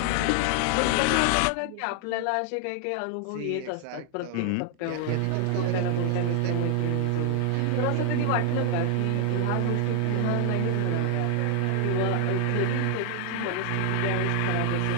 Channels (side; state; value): both; different; correlation 0.00